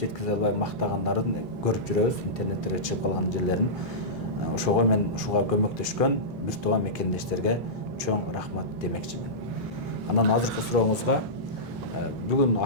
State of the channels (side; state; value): both; normal; correlation -0.15